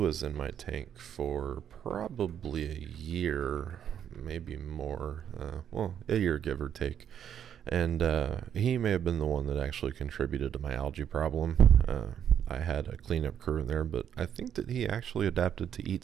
in my tank for probably a year, maybe more. Well, a year give or take. And he may have been the one that actually contributed to my algae problem. I had a cleanup crew in there, but I think that he actually adapted to eat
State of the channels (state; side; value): quieter; left; 9.1 dB